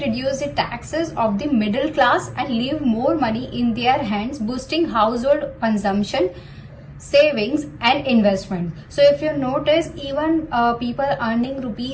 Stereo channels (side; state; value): both; identical; correlation 1.00